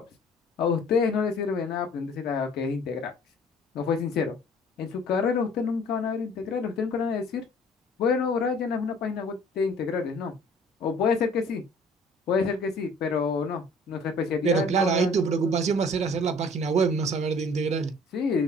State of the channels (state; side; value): normal; both; correlation 0.52